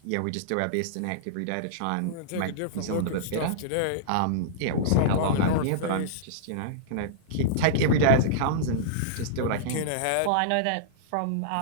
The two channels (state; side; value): different; both; correlation -0.03